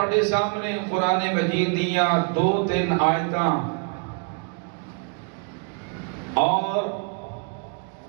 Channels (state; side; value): quieter; left; 37.0 dB